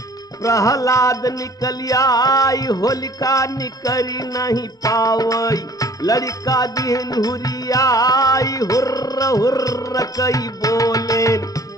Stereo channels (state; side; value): normal; both; correlation 0.53